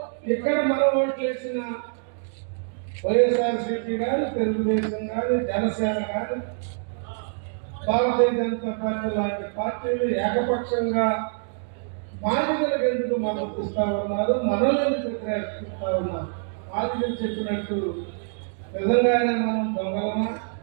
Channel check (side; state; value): left; silent; digital silence